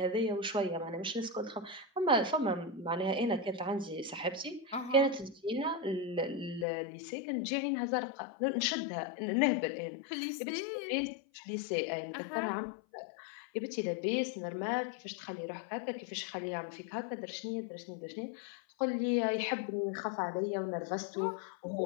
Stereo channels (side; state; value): right; drops out; at 6.7 s